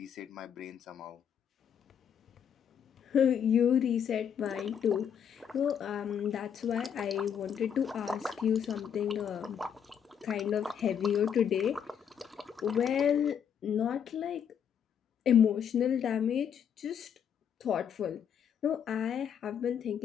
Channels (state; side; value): quieter; right; 8.2 dB